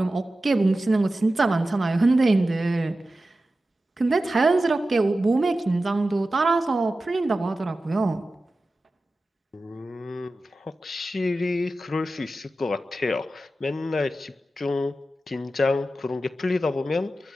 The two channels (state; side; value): normal; both; correlation 0.94